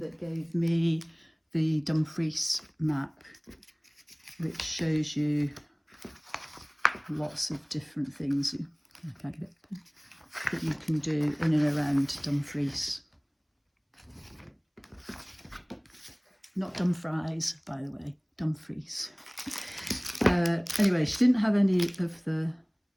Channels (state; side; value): identical; both; correlation 1.00